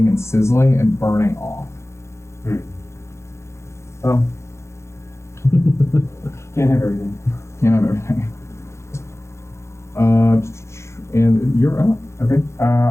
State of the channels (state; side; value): late; right; 0.13 ms